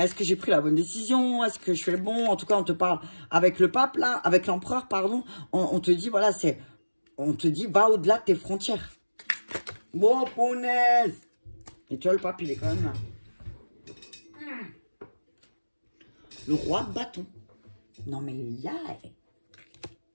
est-ce que j'ai pris la bonne décision? Est-ce que je fais le bon? En tout cas, on te parle avec le pape, là, avec l'empereur, pardon. On te dit, voilà, on te dit, va au-delà de tes frontières. Bon, punaise! Et tu vois, le pape, il est quand même là. Le roi de bâton. Non, mais il y a...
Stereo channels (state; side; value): inverted; both; correlation -1.00